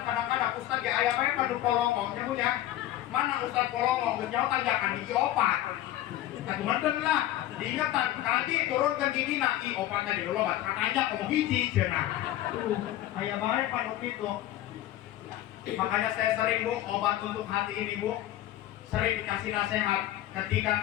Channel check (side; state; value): right; quieter; 13.9 dB